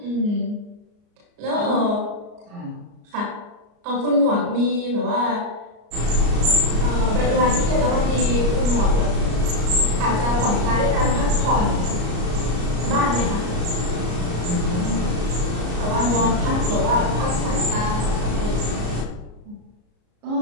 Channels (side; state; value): left; late; 34 ms